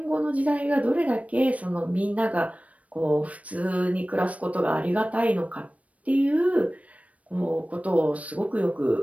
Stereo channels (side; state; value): left; late; 0.066 ms